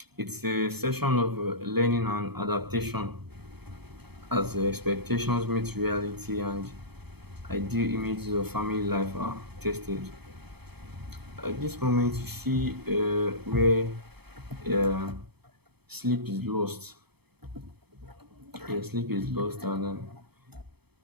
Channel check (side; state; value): left; late; 0.97 ms